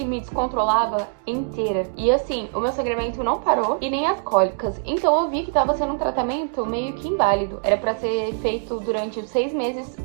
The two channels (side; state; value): left; silent; digital silence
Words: me descontrolava inteira. E assim, o meu sangramento não parou e nem as cólicas. Então eu vi que tava sendo um tratamento meio que inválido. Era pra ser feito durante os 6 meses,